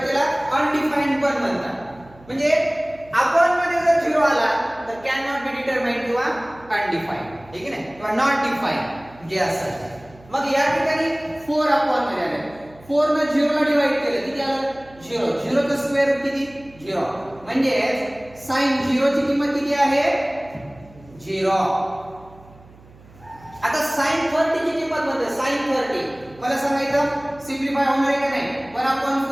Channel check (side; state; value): right; noise; hum, 24 dB below the sound